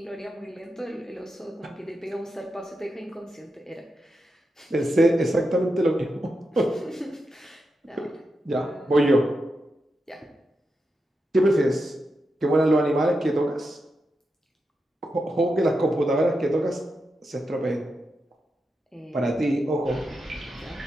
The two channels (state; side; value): normal; both; correlation 0.87